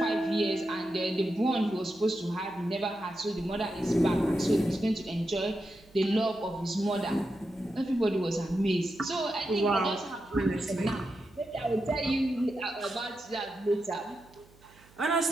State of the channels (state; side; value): noise; right; hum, 27 dB below the sound